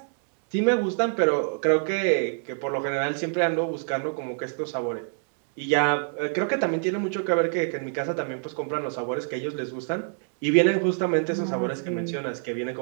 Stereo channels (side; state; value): left; silent; 61 dB below the other